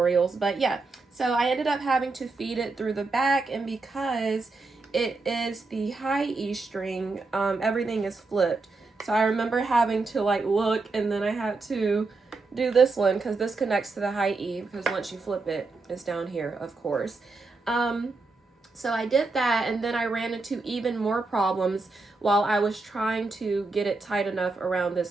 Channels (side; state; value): left; quieter; 3.7 dB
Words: but yeah, so I ended up having to feed it through the back, and because it is the high E string, everything is flipped. So I remember having to like look, and then I had to do this one because this connects to the high E, because once you flip it, it's down here, of course. So I did that, and then I ran into even more problems while I was trying to get it tight enough around this